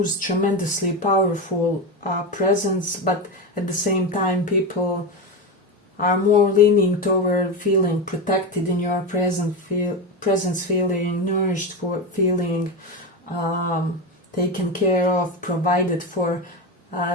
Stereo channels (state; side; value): normal; both; correlation 0.16